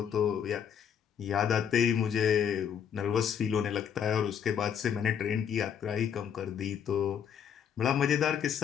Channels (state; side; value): quieter; right; 8.1 dB